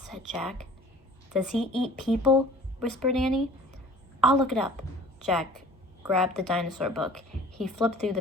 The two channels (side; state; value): both; normal; correlation 0.48